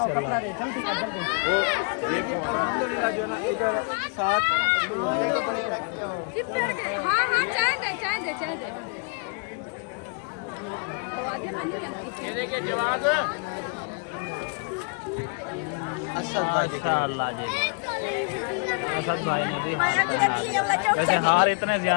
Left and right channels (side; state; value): right; quieter; 38.5 dB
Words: दे जल्दी कर जल्दी। अल्हम्दुलिल्लाह जो ना इधर साथ चिपक गए। हाँ हाँ चाय दे वो आगे मनी अंकित ये देखिए जवाब असद भाई माया की रहती है वाला चौक वैसे हार इतने